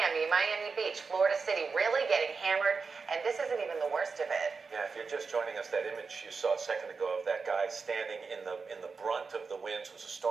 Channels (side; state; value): left; quieter; 4.8 dB